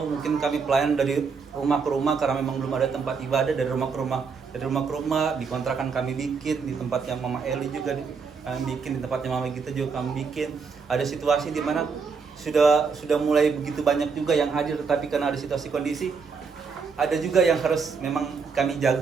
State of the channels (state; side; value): quieter; left; 5.3 dB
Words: mungkin kami pelayan dari rumah ke rumah karena memang belum ada tempat ibadah. Dari rumah ke rumah di kontrakan kami bikin, di tempatnya Mama Eli juga kami bikin, di tempatnya Mama Gita juga kami bikin. Ada situasi di mana sudah mulai begitu banyak juga yang hadir, tetapi karena ada situasi kondisi, ada juga yang harus memang kami